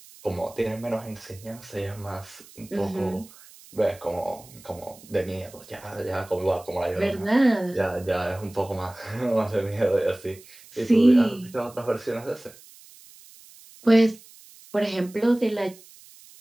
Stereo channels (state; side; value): noise; right; hiss, 22 dB below the sound